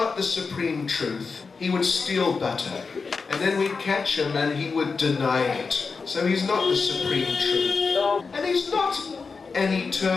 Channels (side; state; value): right; quieter; 4.7 dB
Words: the supreme truth. He would steal butter. And then we'd catch him and he would deny it. So he's not the supreme truth. And he's not an